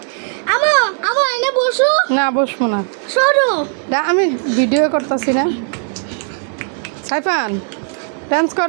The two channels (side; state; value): left; silent; 57 dB below the other